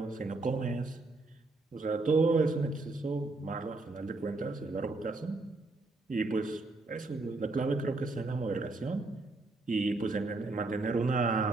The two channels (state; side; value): quieter; left; 3.3 dB